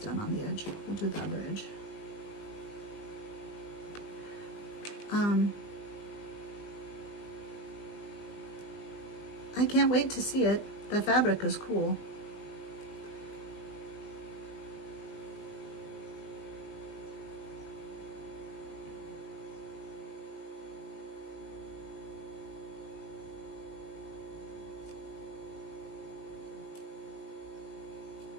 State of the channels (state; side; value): late; right; 20 ms